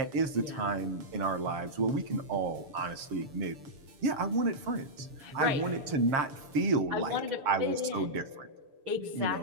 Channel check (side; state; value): left; late; 6.8 ms